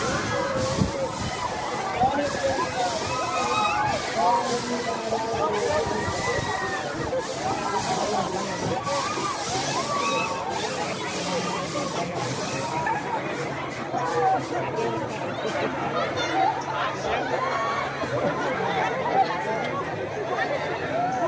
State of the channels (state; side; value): identical; both; correlation 1.00